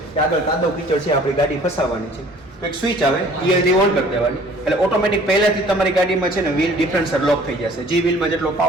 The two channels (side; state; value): both; normal; correlation 0.52